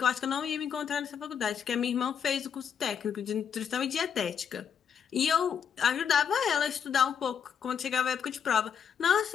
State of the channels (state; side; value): quieter; right; 7.7 dB